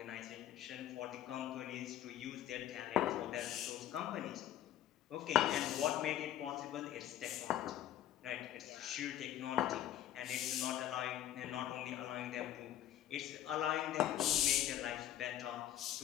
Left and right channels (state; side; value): quieter; right; 12.0 dB